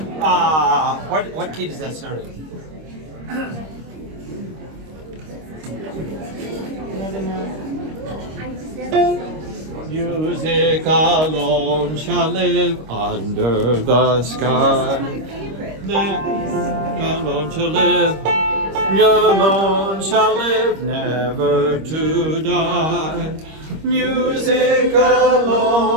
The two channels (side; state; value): left; late; 26 ms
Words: What key does that start in? Music alone shall live under the sky. Alone shall live. Alone shall live, never to die. Music